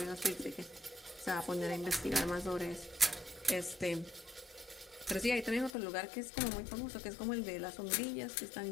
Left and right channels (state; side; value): drops out; right; at 5.8 s